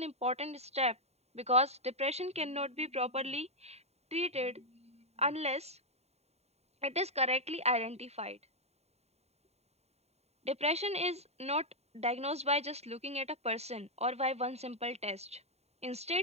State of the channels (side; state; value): left; late; 0.31 ms